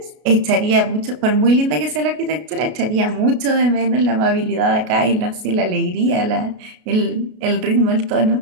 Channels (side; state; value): left; late; 33 ms